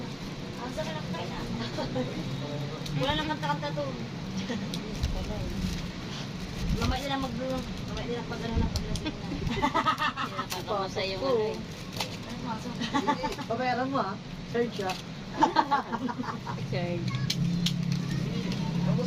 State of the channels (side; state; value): both; identical; correlation 1.00